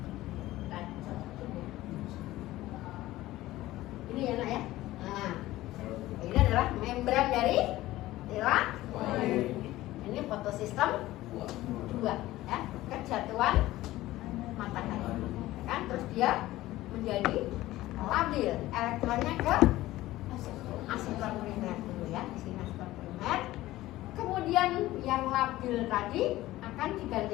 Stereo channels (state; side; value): quieter; right; 16.5 dB